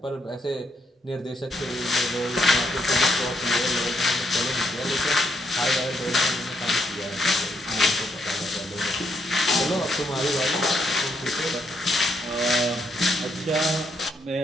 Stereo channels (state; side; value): normal; both; correlation 0.76